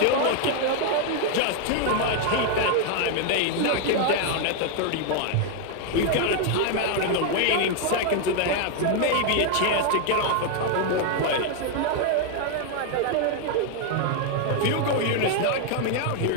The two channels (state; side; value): different; both; correlation 0.00